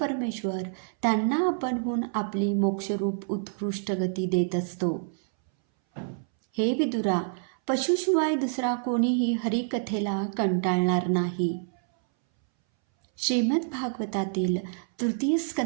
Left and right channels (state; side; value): silent; left; 60 dB below the other